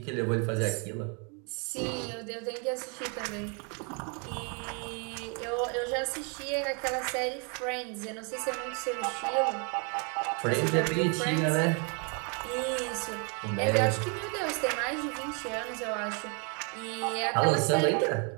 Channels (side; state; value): left; quieter; 36.2 dB